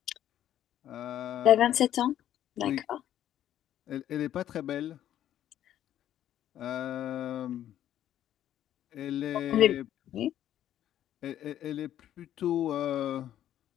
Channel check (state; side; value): quieter; right; 11.6 dB